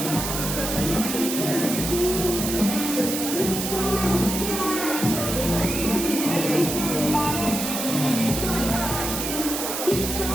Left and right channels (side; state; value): right; noise; hiss, 3 dB below the sound